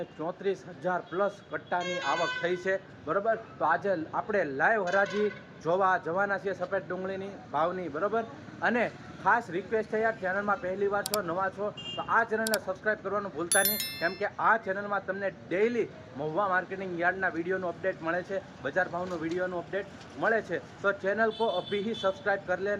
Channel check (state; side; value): identical; both; correlation 1.00